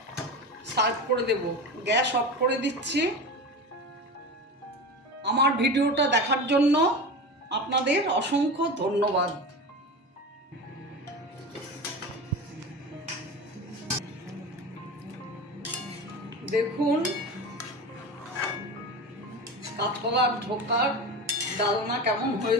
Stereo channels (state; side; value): normal; both; correlation 0.27